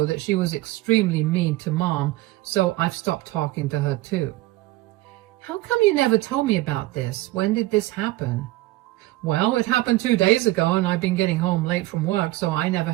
that she was extremely mean to Mom, so I've stopped talking to her too. How come you never told me about this? When did this happen? Well, it happened 2 days ago and I've been getting home late from work, so I never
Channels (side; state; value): left; quieter; 18.3 dB